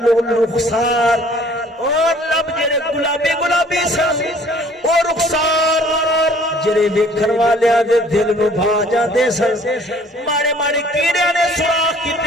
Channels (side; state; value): both; normal; correlation 0.55